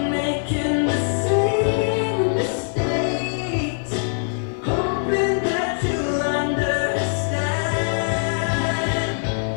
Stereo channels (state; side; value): silent; right; digital silence